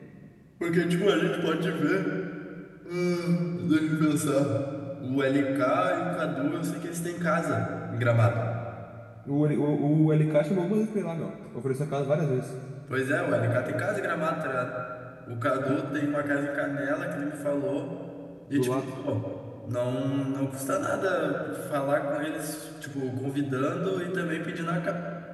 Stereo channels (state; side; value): identical; both; correlation 1.00